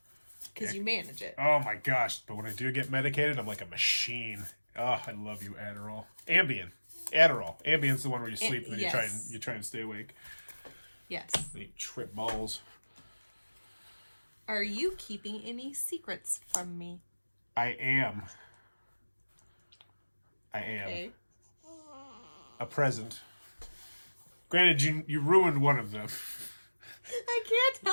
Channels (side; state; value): both; inverted; correlation -1.00